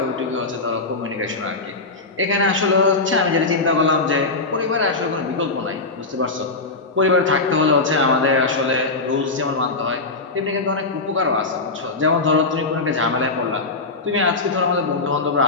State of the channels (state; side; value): quieter; right; 3.5 dB